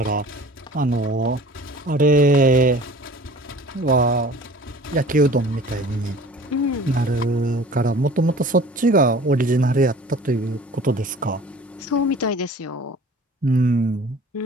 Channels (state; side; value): normal; both; correlation 0.45